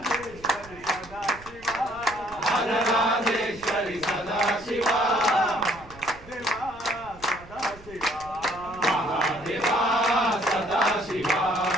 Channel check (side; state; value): right; noise; rumble, 20 dB below the sound